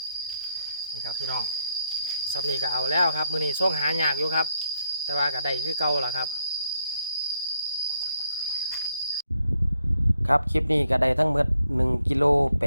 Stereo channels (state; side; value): inverted; both; correlation -0.77